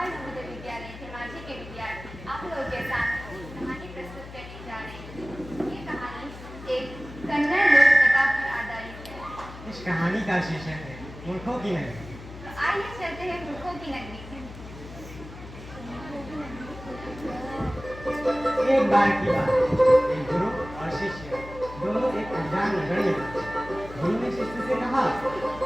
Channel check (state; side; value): noise; left; hum, 14 dB below the sound